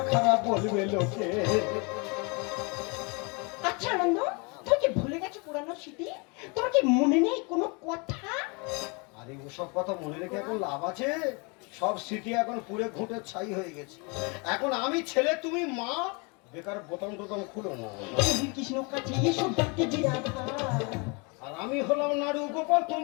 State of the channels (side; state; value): right; quieter; 31.2 dB